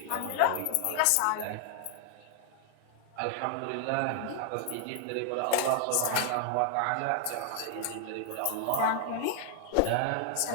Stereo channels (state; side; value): different; both; correlation 0.00